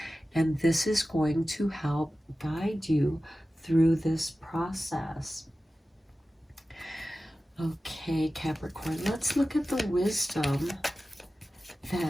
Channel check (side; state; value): both; normal; correlation 0.95